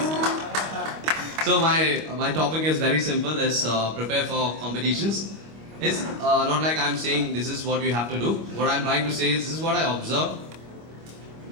So my topic is very simple. Is prepare for competitions. It's not like I'm saying this is what you have to do. What I'm trying to say is this is what I observed.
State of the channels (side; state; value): left; late; 25 ms